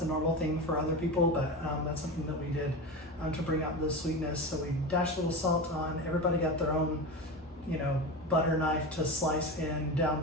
a normal thing for other people, but that's something that we did to bring out the sweetness. So we dashed a little salt on. Everybody got their own, butter knife to slice in down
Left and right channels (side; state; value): both; normal; correlation 0.24